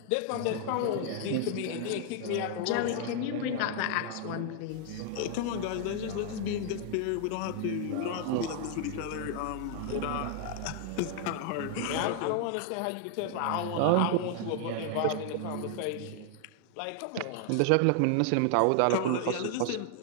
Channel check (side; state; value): both; different; correlation 0.00